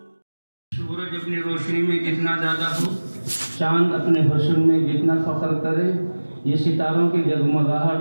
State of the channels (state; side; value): inverted; both; correlation -1.00